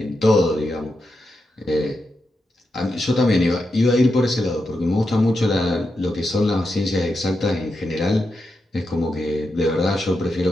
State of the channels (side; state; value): both; normal; correlation 0.87